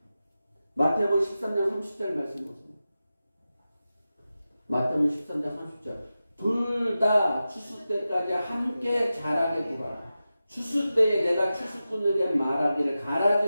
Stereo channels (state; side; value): inverted; both; correlation -0.93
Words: 마태복음 13장 30절 말씀 보세요. 마태복음 13장 30절. 둘 다 추수 때까지 함께 자라게 두라. 추수 때에 내가 추수꾼에게 말하기를